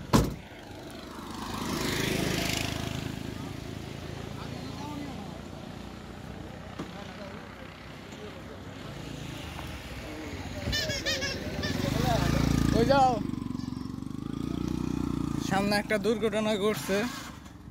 ওই যাও, সামনে একটা দুর্ঘটনা ঘটছে।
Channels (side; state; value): both; identical; correlation 1.00